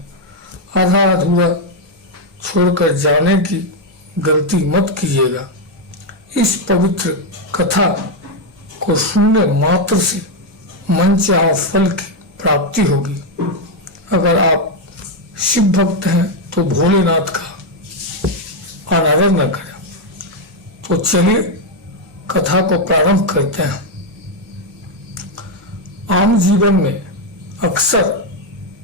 आधा अधूरा छोड़कर जाने की गलती मत कीजिएगा। इस पवित्र कथा को सुनने मात्र से मनचाहा फल की प्राप्ति होगी। अगर आप शिव भक्त हैं तो भोलेनाथ का अनादर न करें। तो चलिए कथा को प्रारंभ करते हैं। आम जीवन में अक्सर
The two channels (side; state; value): both; normal; correlation 0.03